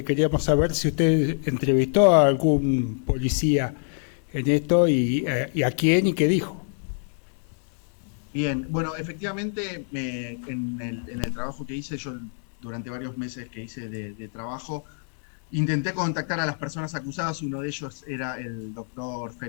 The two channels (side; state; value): right; silent; digital silence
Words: queríamos saber si usted entrevistó a algún policía en esto y a quién y qué dijo. Bien, bueno, efectivamente en el trabajo que hice, yo durante varios meses que hice de trabajo, intenté contactar a las personas acusadas. Uno de ellos era el doctor